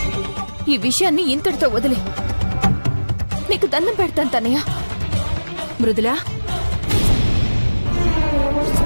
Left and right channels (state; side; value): inverted; both; correlation -1.00